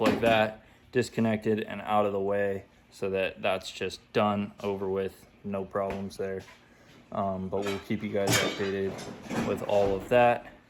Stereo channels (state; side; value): identical; both; correlation 1.00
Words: like that, disconnected and out of the way, so that that's just done, over with, no problems there. But we'll keep you guys updated with all of that